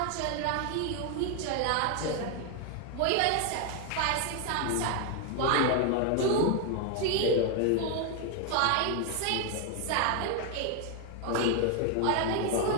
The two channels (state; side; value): different; both; correlation 0.01